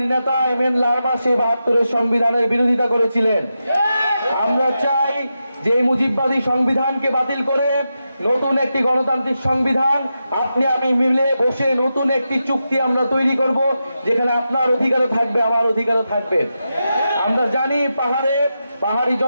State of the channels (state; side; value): inverted; both; correlation -0.88